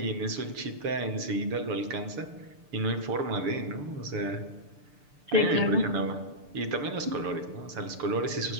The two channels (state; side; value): late; left; 6.8 ms